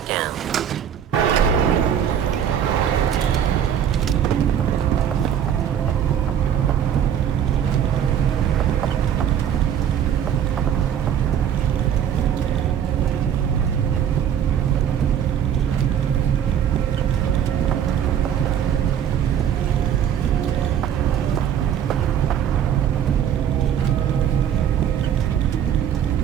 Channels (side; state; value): left; quieter; 9.1 dB